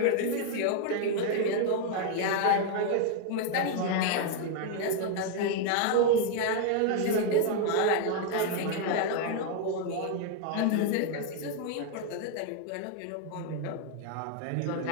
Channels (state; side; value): different; both; correlation 0.00